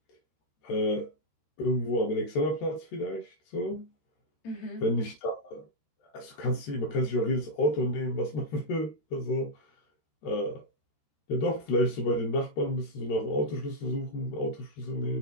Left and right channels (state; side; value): late; right; 13 ms